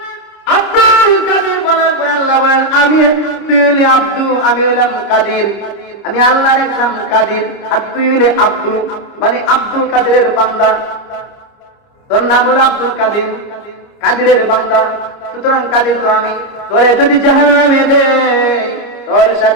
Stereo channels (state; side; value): late; right; 30 ms